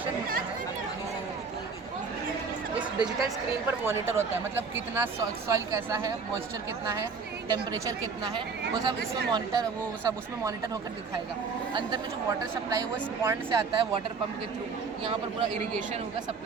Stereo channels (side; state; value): left; quieter; 5.1 dB